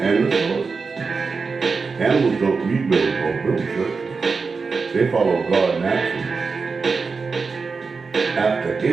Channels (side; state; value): left; quieter; 4.7 dB